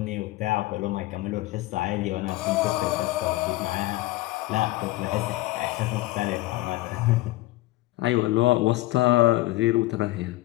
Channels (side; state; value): right; quieter; 18.1 dB